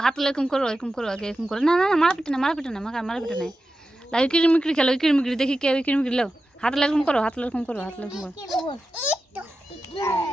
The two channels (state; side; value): normal; both; correlation 0.92